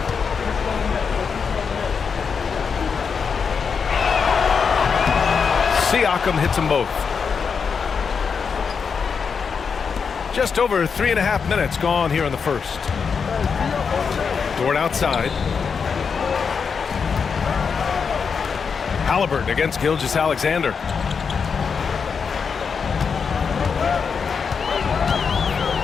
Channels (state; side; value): quieter; right; 5.9 dB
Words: Siakam hits them both. Just over 3.5 minutes gone here in the first. Dort outside. Halliburton against Gilgeous-Alexander.